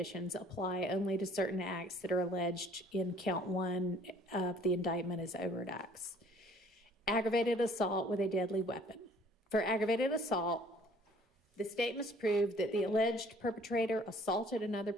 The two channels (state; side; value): normal; both; correlation 0.56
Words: apply only to certain acts that are alleged in count 1 of the indictment as overt acts. Aggravated assault with a deadly weapon. For aggravated assault, the state must prove that the alleged perpetrator assaulted another